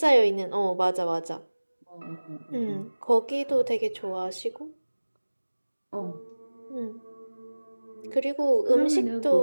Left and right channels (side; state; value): both; inverted; correlation -1.00